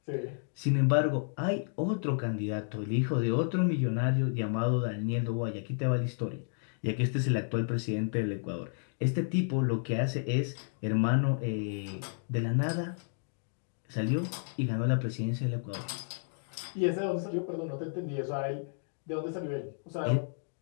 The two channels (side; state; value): right; silent; digital silence